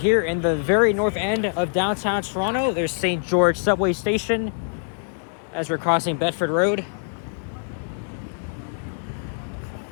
in the very north end of downtown Toronto. There's St. George subway station as we're crossing Bedford Road.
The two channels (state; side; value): silent; right; digital silence